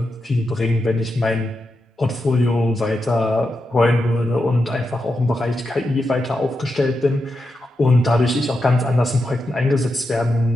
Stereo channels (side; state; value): both; normal; correlation 0.87